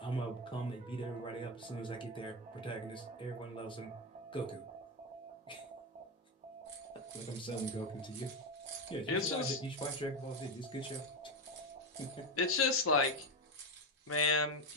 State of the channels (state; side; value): normal; both; correlation 0.10